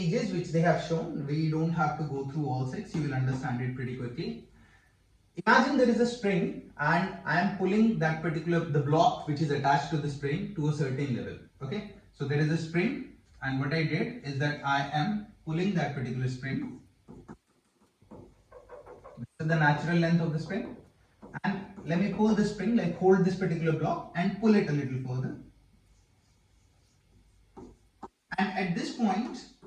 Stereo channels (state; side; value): identical; both; correlation 1.00